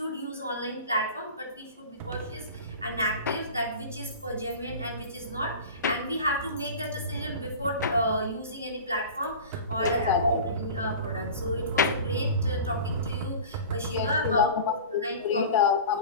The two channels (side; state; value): both; inverted; correlation -0.35